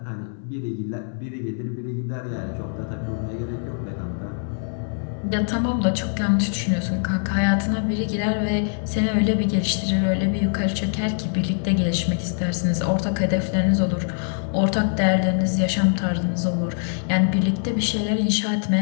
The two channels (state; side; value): silent; right; 63 dB below the other